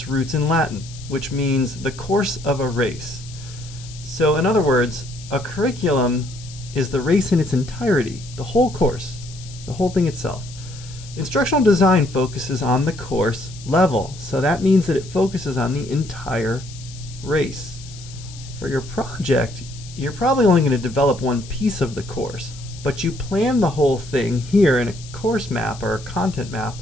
roots in Latin, which means the course of a race. So, in other words, a curriculum is the race in its entirety, the whole course, the whole thing itself. Instructional design focuses on the course level, so that means that it focuses on the entire race. For your project, you're probably only going to develop one piece of the course, but you plan the whole thing here in a course map or a content map.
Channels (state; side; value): noise; left; hiss, 18 dB below the sound